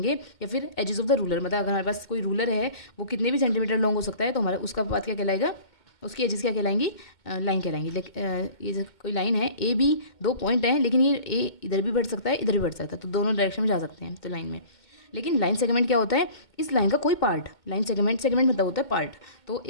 या फिर एजेस ऑफ द रूलर, मतलब अगर हमारे पास कोई रूलर है वो कितने भी सेंटीमीटर लॉन्ग हो सकता है, तो हमारा उसका पाथ क्या कहलाएगा, उसकी एजेस क्या कहलाएंगी, लाइन कहलाएंगी। ये जो कोई लाइन है ए बी, दो पॉइंट हैं, लेकिन ये ए इधर भी बढ़ सकता है इधर भी बढ़ सकता है, तो दोनों डायरेक्शन में जा सकते हैं तो लाइन में। लेकिन लाइन सेगमेंट क्या होता है, इस लाइन का कोई पार्ट, लाइन सेगमेंट मतलब होता है पार्ट। तो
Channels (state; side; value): late; right; 2.2 ms